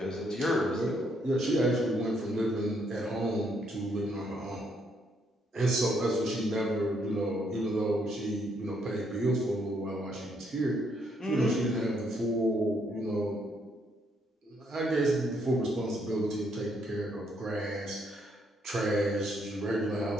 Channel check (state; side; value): normal; both; correlation 0.72